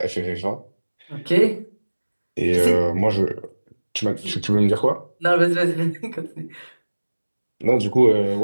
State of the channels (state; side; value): inverted; both; correlation -1.00